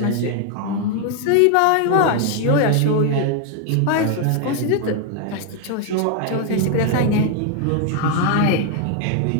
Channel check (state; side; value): different; both; correlation 0.00